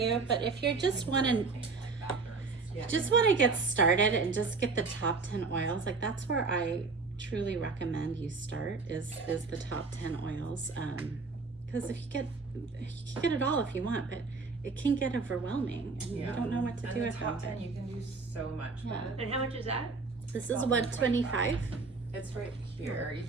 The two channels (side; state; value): left; quieter; 4.3 dB